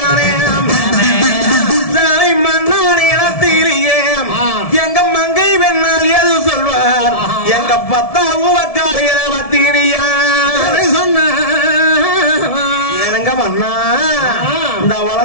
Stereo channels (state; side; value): late; right; 1.7 ms